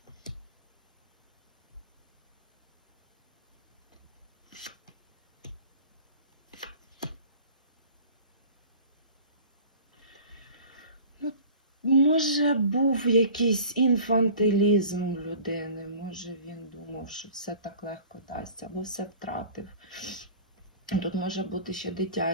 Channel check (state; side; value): inverted; both; correlation -0.43